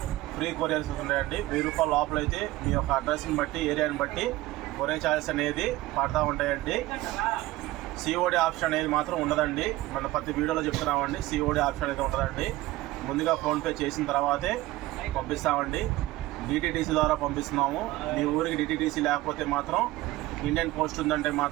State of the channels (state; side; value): quieter; left; 17.7 dB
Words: ఫ్రీ కొరియర్స్ ఉన్నాయండి. 1000 రూపాయల లోపల అయితే మీ యొక్క అడ్రస్ని బట్టి, ఏరియాని బట్టి కొరియర్ ఛార్జెస్ అనేది పడతా ఉంటాయండి. సిఓడి ఆప్షన్ అనేది మాత్రం ఉండదండి. మన ప్రతి వీడియోలో చెప్తున్నామండి, సిఓడి ఆప్షన్ అయితే ఉండదండి. ముందుగా ఫోన్పే చేసిన తర్వాతే పంపిస్తామండి. డిటిడిసి ద్వారా పంపిస్తున్నాము. మీ ఊరికి డిటిడిసి లేకపోతే మాత్రం ఇండియన్ పోస్ట్ ఉందంటే